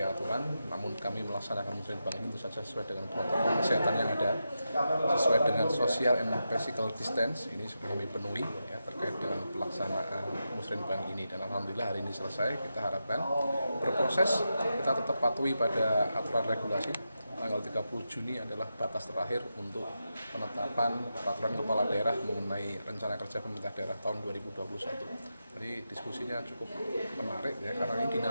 aturan, namun kami melaksanakan musrenbang ini tentu saja sesuai dengan protokol kesehatan yang ada, sesuai dengan social and physical distance. Ini sudah kami penuhi ya, terkait dengan pelaksanaan musrenbang ini, dan alhamdulillah hari ini selesai. Kita harapkan berproses, kita tetap patuhi pada aturan regulasi. Tanggal 30 Juni adalah batas terakhir untuk penetapan peraturan kepala daerah mengenai rencana kerja pemerintah daerah tahun 2021. Jadi diskusinya cukup menarik ya, karena ini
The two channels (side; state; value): both; inverted; correlation -0.88